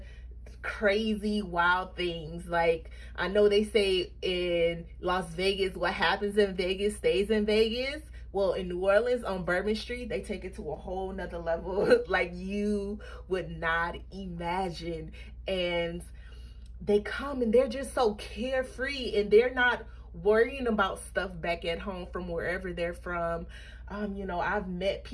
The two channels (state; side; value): identical; both; correlation 1.00